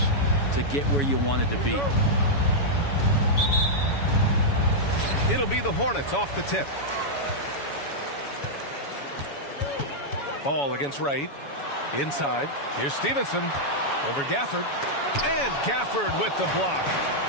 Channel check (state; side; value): late; right; 7.1 ms